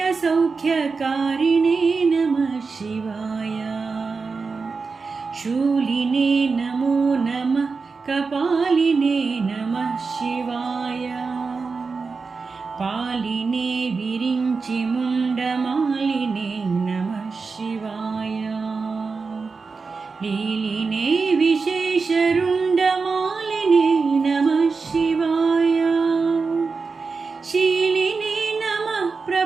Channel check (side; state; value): left; quieter; 4.6 dB